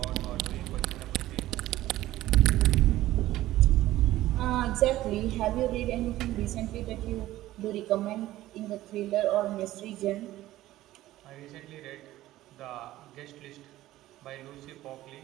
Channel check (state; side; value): quieter; left; 15.4 dB